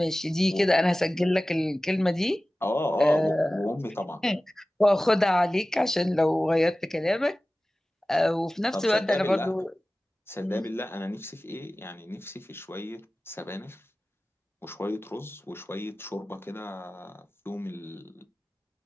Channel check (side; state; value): both; normal; correlation 0.96